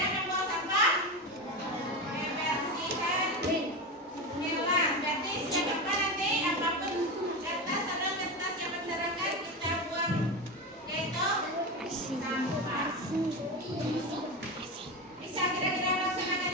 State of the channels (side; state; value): both; normal; correlation 0.19